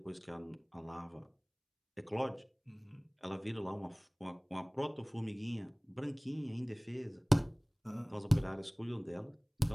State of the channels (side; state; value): both; identical; correlation 1.00